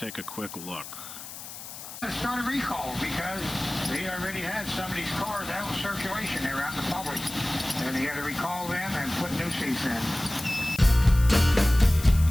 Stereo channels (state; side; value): noise; left; hiss, 12 dB below the sound